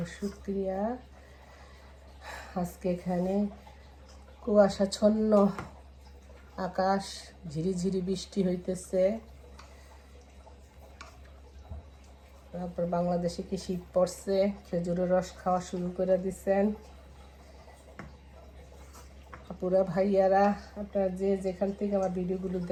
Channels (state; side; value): identical; both; correlation 1.00